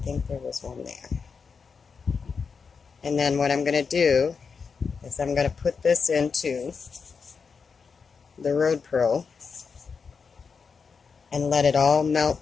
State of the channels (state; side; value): quieter; right; 5.5 dB